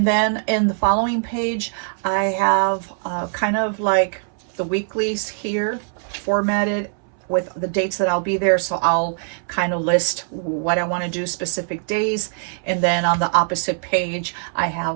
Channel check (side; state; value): left; silent; 64 dB below the other